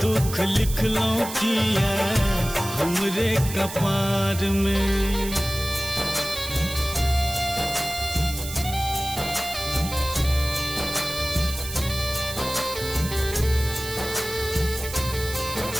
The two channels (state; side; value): noise; right; hiss, 9 dB below the sound